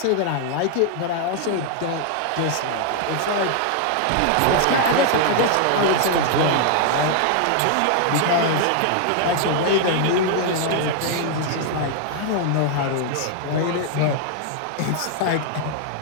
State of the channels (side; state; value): both; different; correlation 0.00